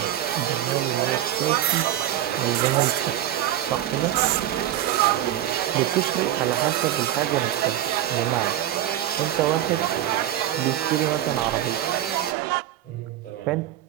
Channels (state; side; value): quieter; left; 12.7 dB